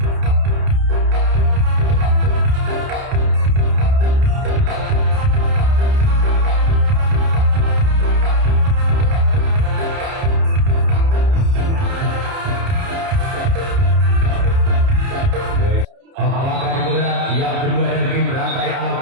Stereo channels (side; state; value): left; late; 30 ms